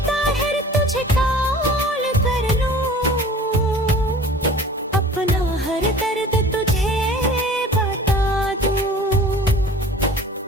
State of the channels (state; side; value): normal; both; correlation 0.45